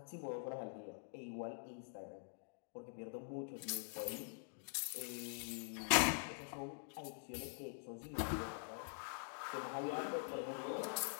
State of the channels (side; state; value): right; silent; digital silence